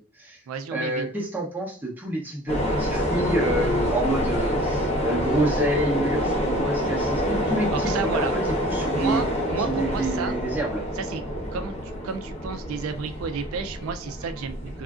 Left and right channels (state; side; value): normal; both; correlation 0.46